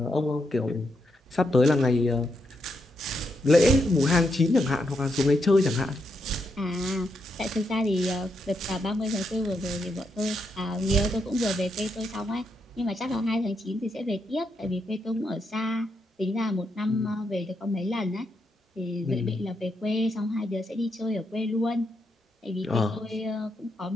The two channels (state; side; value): normal; both; correlation 0.81